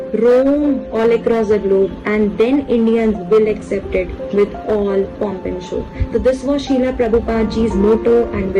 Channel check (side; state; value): both; identical; correlation 1.00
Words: roam all across the globe, and then Indians will accept it with all pomp and show. So this was Srila Prabhupada ji's motto and